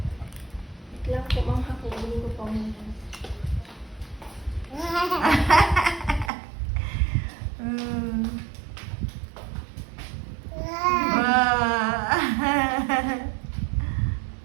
Wait lang po, ma'am. Hakunin ko pa muna. Hmm. Wow.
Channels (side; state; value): left; drops out; at 6.3 s